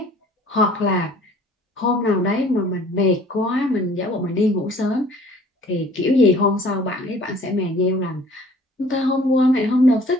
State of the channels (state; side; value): normal; both; correlation 0.52